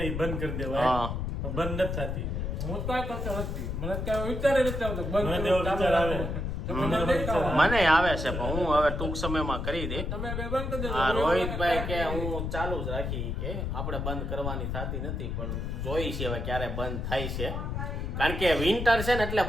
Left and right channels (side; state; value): left; noise; rumble, 3 dB below the sound